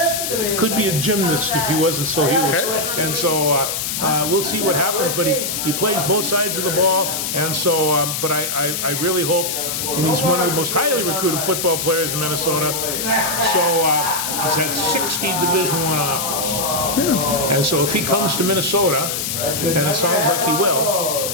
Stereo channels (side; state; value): left; noise; hiss, 2 dB below the sound